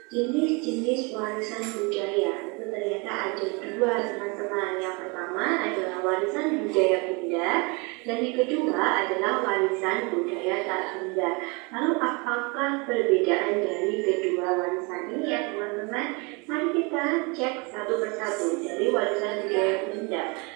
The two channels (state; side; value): quieter; left; 29.8 dB